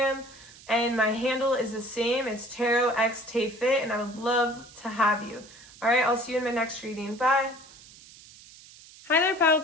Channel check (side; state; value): right; noise; hiss, 21 dB below the sound